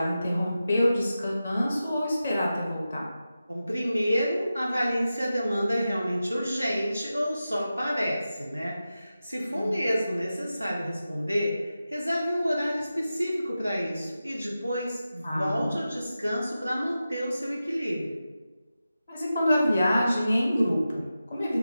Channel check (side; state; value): both; inverted; correlation -0.93